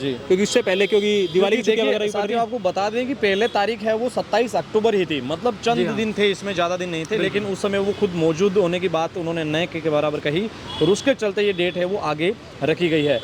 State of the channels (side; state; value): both; identical; correlation 1.00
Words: क्योंकि उससे पहले, क्योंकि दिवाली की छुट्टियां वगैरह भी पड़ रही साथियों हैं। आपको बता दें कि पहले तारीख है वो 27 अक्टूबर ही थी, मतलब चंद दिन थे, इसमें ज़्यादा दिन नहीं थे, लेकिन उस समय वो खुद मौजूद होने की बात उन्होंने नए के बराबर कही और उसके चलते ये डेट है वो आगे रखी गई है।